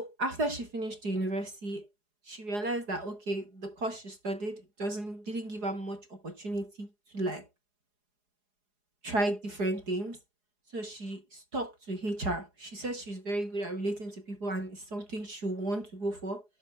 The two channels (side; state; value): left; late; 4.8 ms